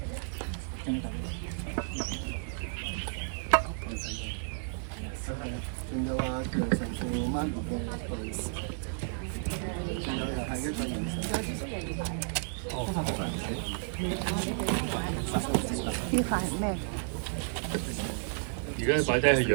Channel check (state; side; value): silent; left; 56 dB below the other